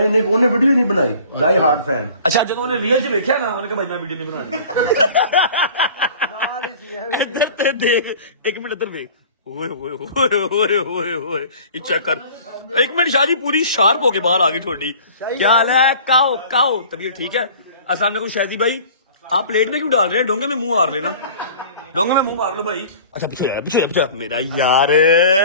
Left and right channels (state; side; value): inverted; both; correlation -0.45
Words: उन्हें वीडियो नहीं बनाई। Die hard fan. अच्छा जो उन्होंने रियल च देखा ना उन्होंने कहा भाई मैं वीडियो नहीं बनानी। इधर ते देख, एक मिनट इधर देख। ओए चेक कर, एक मिनट शादी पूरी शार्प होके बाहर आ गई थोड़ी। क्या हाल है? काओ तबीयत ठीक है? अस्सलाम वालेकुम शादी भाई, आप प्लेट में क्यों डाल रहे हैं? डोंगे में मुंह मार लेना, डोंगे में मुंह मार लो भाई। अच्छा पीछे मेरा यार